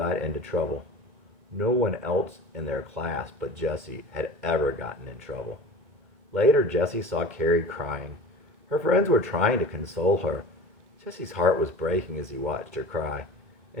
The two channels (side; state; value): left; late; 2.4 ms